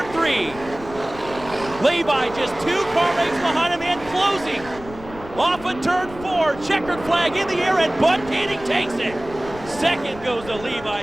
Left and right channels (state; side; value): noise; left; rumble, 16 dB below the sound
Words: 3. Levi just 2 car lengths behind him and closing. Off of turn 4, checkered flag in the air, and Bud Kading takes it. Second goes to